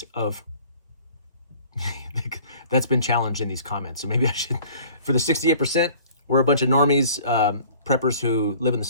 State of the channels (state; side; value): inverted; both; correlation -0.50